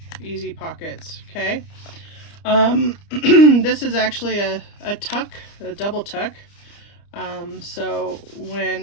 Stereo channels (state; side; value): late; right; 30 ms